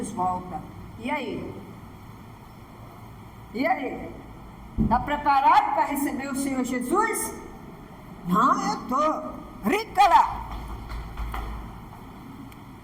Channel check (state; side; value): identical; both; correlation 1.00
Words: volta. E aí? E aí? Está preparado para receber o Senhor Jesus? Não, eu estou. Rica lá.